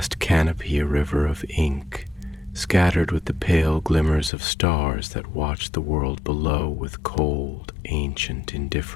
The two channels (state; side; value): drops out; right; at 4.3 s